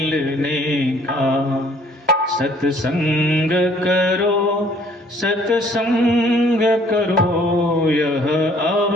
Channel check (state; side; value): normal; both; correlation 0.59